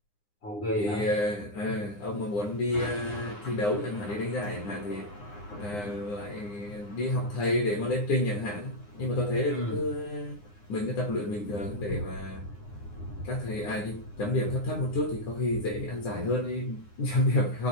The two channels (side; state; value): right; late; 9.8 ms